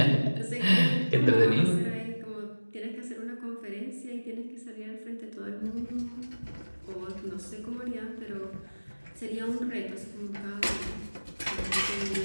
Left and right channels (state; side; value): inverted; both; correlation -1.00